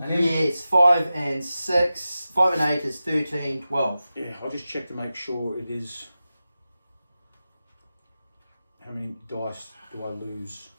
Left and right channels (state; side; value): inverted; both; correlation -0.94